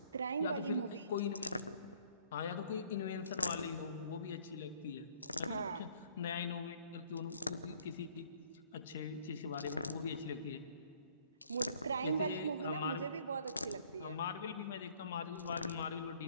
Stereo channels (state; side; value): inverted; both; correlation -0.59